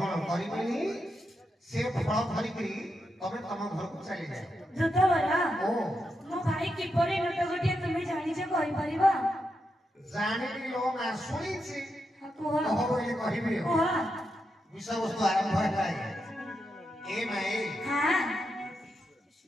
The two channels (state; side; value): normal; both; correlation 0.85